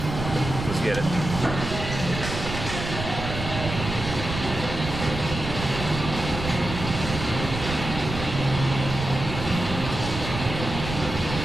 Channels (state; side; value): noise; right; rumble, 6 dB below the sound